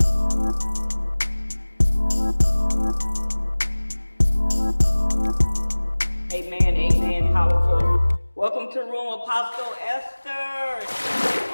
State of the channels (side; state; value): both; inverted; correlation -1.00